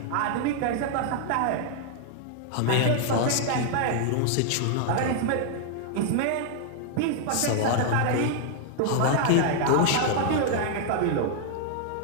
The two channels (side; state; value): both; different; correlation 0.00